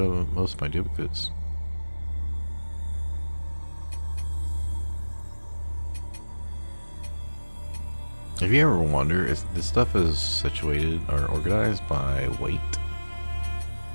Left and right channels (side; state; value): both; inverted; correlation -1.00